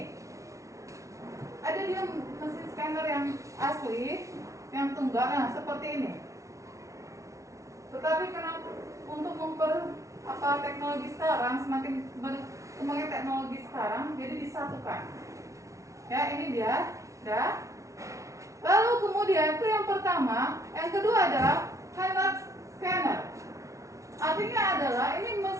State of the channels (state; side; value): late; left; 0.15 ms